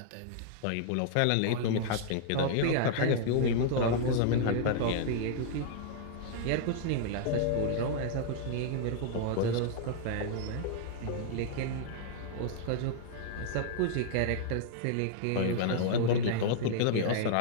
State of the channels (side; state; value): both; different; correlation -0.01